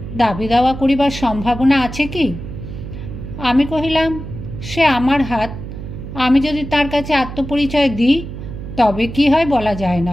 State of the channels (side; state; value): right; noise; hum, 10 dB below the sound